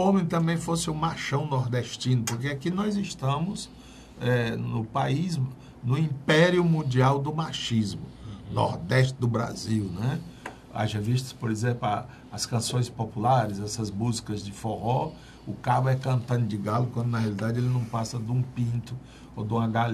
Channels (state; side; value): identical; both; correlation 1.00